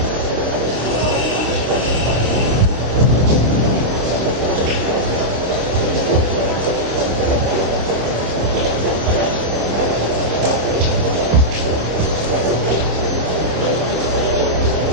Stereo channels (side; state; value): left; late; 26 ms